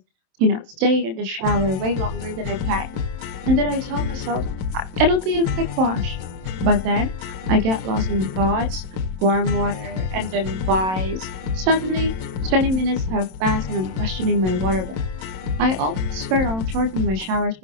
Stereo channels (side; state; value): left; late; 27 ms